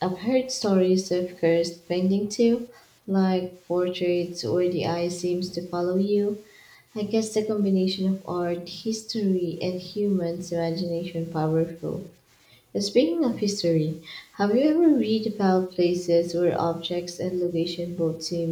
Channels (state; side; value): identical; both; correlation 1.00